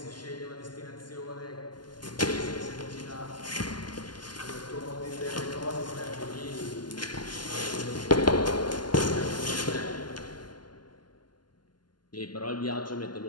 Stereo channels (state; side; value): late; right; 0.71 ms